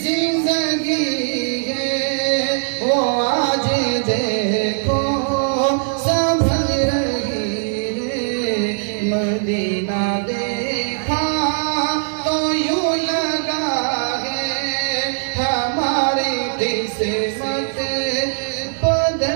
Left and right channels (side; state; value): left; silent; 66 dB below the other